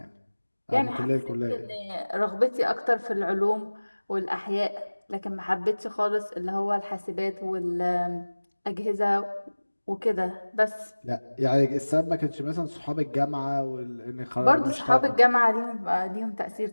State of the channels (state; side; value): inverted; both; correlation -1.00